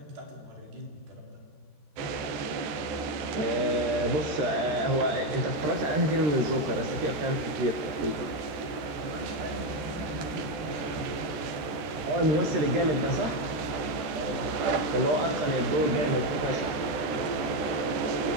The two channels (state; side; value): late; left; 14 ms